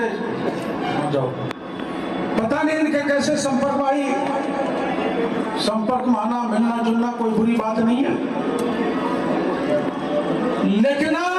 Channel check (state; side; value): identical; both; correlation 1.00